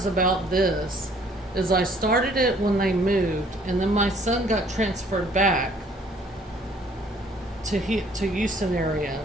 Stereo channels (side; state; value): both; normal; correlation 0.59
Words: about this is I started it when they moved, and then my son got transferred back to Houston